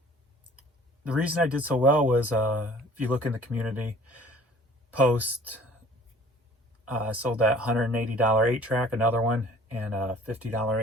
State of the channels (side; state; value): both; normal; correlation 0.51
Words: reason I did so well was, if you look in the community post, I sold that $180 8-track, another one, and a $50